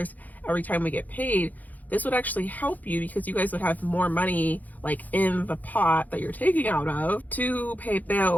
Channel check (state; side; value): late; right; 0.081 ms